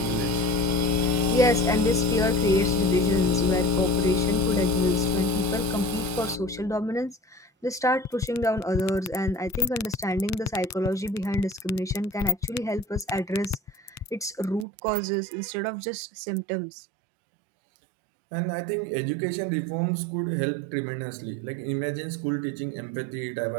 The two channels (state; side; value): drops out; left; at 14.7 s